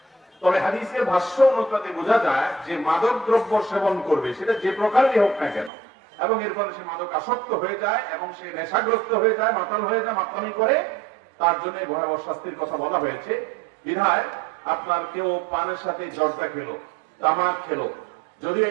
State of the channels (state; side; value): drops out; left; at 5.7 s